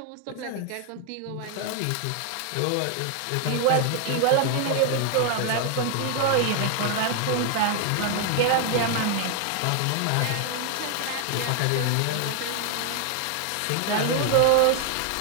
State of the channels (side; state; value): both; different; correlation 0.00